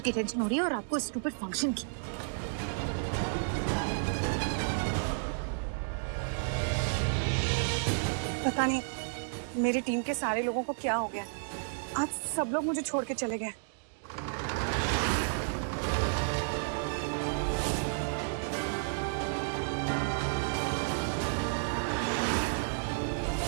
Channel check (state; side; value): silent; left; digital silence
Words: की टेंशन हो रही है और आपको स्टूपिड फंक्शन की। पता नहीं मेरी टीम के सारे लोगों को क्या हो गया। आज सब लोग मुझे छोड़ के चले गए।